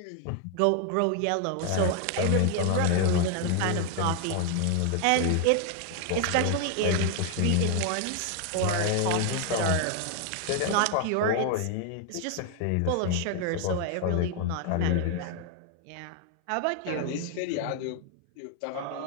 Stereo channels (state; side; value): different; both; correlation 0.00